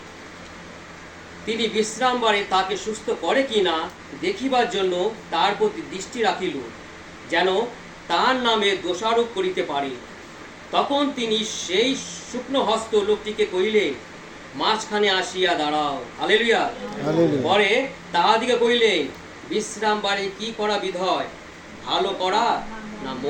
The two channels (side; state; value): both; identical; correlation 1.00